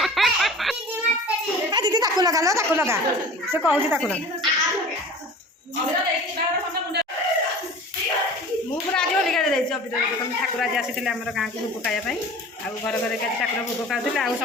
ଦିଦି ତାକୁ ଲଗା ସେ କହୁଛି ତାକୁ ଲଗା ମୁଁ ପୁରା ଆଜି ହୋଲି ଖେଳି ଯାଇଛି ଅବିର ଠାକୁର ଆଜି ଆସିଥିଲେ ଆମର ଗାଁକୁ ଭୋଗ ଖାଇବା ପାଇଁ ଆଉ ଘରେ ଘରେ ଆଜି ଠାକୁର ଭୋଗ ଖାଉଥିଲେ ଆଉ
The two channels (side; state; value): both; normal; correlation 0.41